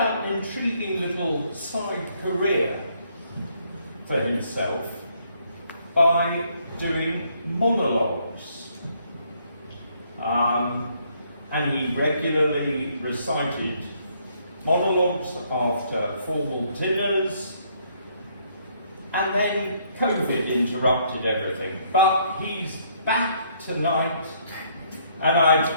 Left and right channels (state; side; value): inverted; both; correlation -0.68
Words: an intriguing little side career for himself by doing monologues. And he regularly recited monologues after formal dinners, and then COVID interrupted everything. But he's back tonight, and I'd